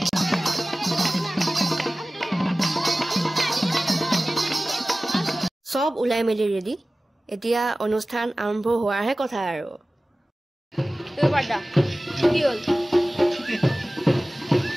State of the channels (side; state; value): both; normal; correlation 0.97